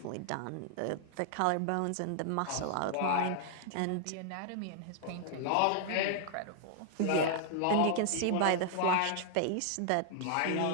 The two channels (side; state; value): both; different; correlation 0.00